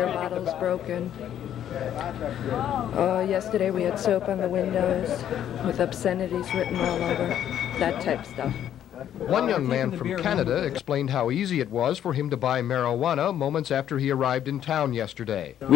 bottles broken. Yesterday we had soap on the windows with obscenities written all over, that type of stuff. One young man from Canada explained how easy it was for him to buy marijuana moments after he arrived in town yesterday.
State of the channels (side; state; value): right; quieter; 10.5 dB